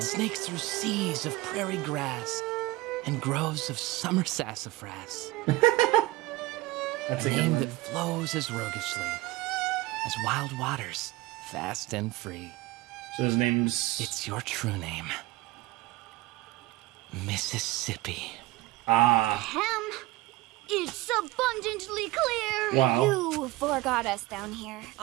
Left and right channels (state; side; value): quieter; left; 18.9 dB